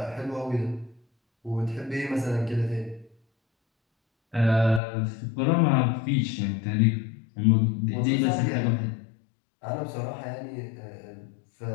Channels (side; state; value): right; drops out; at 4.8 s